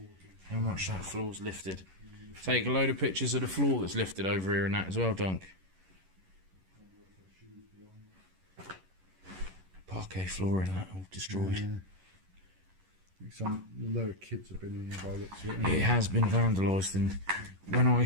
How much that floor's lifted. Take a load of pictures of the floor that's lifted over here and that as well, Dunk. Parquet flooring, that all destroyed. Yeah. Some load of kids have been in here by the looks of it. It has been vandalised, and when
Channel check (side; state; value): left; late; 11 ms